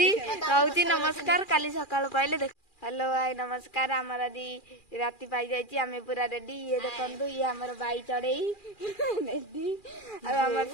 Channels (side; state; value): right; late; 2.4 ms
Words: नमस्कार काली सकाल पाइले हेलो हाय नमस्कार आमर आदि राति पाई जाइए आम पूरा रेडी ये देखु ये आमर बाई चढ़ई रेडी आमर